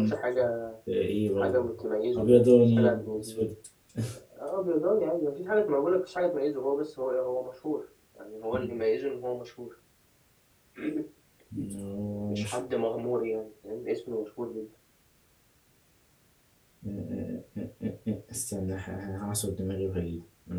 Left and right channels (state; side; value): identical; both; correlation 1.00